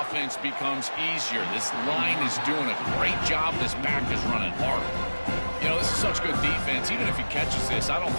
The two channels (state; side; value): inverted; both; correlation -1.00